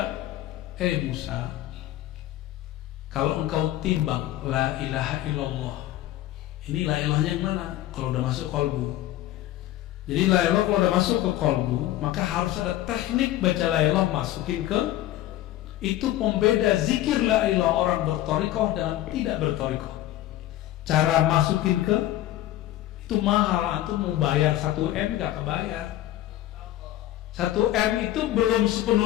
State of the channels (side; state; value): right; quieter; 14.2 dB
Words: Musa, kalau engkau timbang la ilaha illallah, ini la ilahnya yang mana? Kalau udah masuk kolbu. Jadi la ilah kalau udah masuk ke kolbu, maka harus ada teknik baca la ilah masukin ke. Itu pembeda zikir la ilah orang berthariqah dan tidak berthariqah. Cara masukin ke itu mahal, antum mau bayar 1M gak kebayar. 1M itu belum